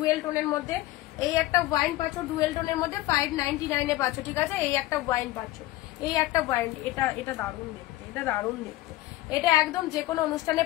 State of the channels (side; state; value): right; quieter; 17.3 dB